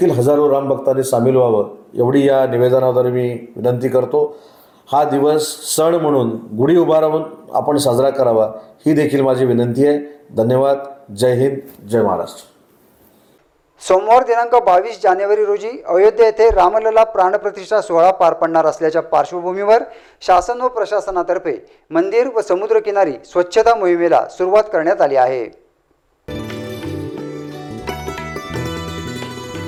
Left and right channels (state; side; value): identical; both; correlation 1.00